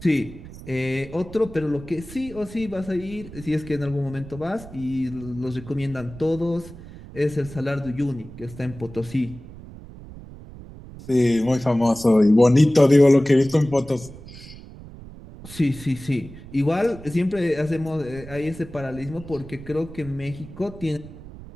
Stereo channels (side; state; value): right; noise; rumble, 16 dB below the sound